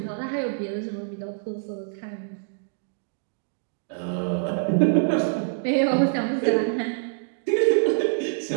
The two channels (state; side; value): silent; left; digital silence